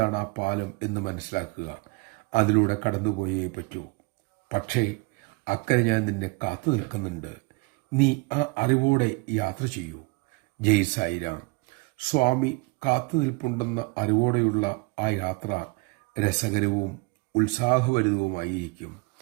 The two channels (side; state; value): left; quieter; 26.8 dB